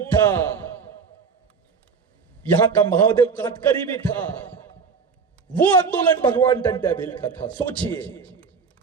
था, यहां का महादेव काटकरी भी था। वो आंदोलन भगवान टंट्या भील का था। सोचिए,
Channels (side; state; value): left; quieter; 5.5 dB